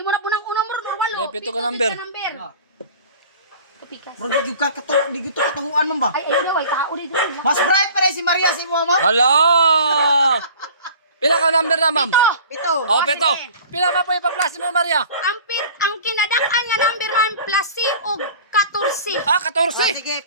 na po ng unang muro or walo. May pito ka number. Kapikas. Bro, di gito katahuan man ba? Ay, ayaw daw, ay kauri daw. Mas bright pa rin si Maria si mama. Hala! Pila ka number na, ma'am? Pito. Oh, pito. Pila ma po ipa-plus mo, Maria? Ang kinadak-an nga number man plus C og 14. Ah, 14. Sige,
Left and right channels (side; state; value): both; inverted; correlation -0.44